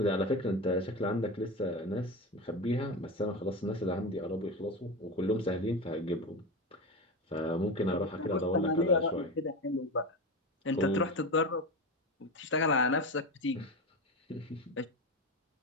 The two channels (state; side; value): normal; both; correlation 0.22